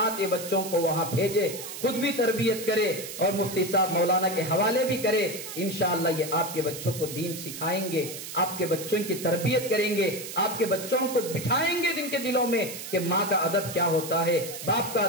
یہ بچوں کو وہاں بھیجے، خود بھی تربیت کرے اور مفتی صاحب مولانا کے حوالے بھی کرے۔ انشاءاللہ یہ آپ کے بچوں کو دین سکھائیں گے، آپ کے بچوں کی تربیت کریں گے، آپ کے بچوں کو بٹھائیں گے جن کے دلوں میں کہ ماں کا ادب کیا ہوتا ہے، باپ کا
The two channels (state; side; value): noise; right; hiss, 9 dB below the sound